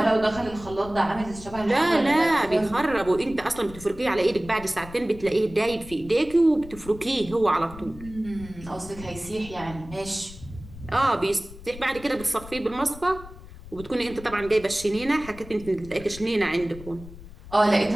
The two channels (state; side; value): noise; left; rumble, 16 dB below the sound